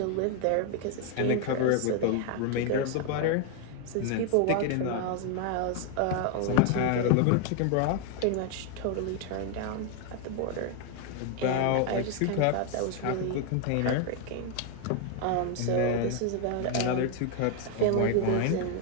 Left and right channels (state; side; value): different; both; correlation 0.01